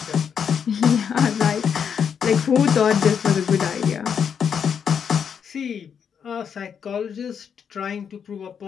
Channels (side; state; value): right; quieter; 7.3 dB